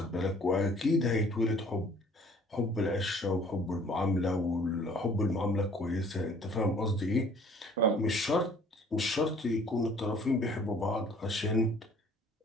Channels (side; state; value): both; normal; correlation 0.55